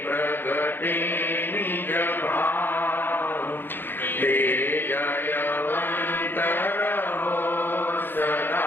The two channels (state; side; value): late; right; 0.098 ms